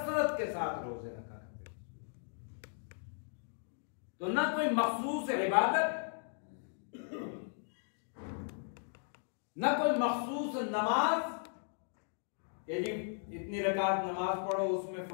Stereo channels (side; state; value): right; silent; digital silence